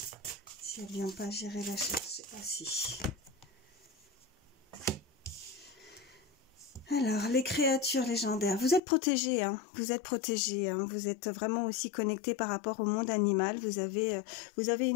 Si elle vient pas, j'irai la chercher. Ah si. Alors, les créatures légendaires, vous êtes protégés, hein, vous êtes protégés, hein, vous êtes vraiment aussi connectés par rapport au monde animal, vous avez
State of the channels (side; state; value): right; drops out; at 8.8 s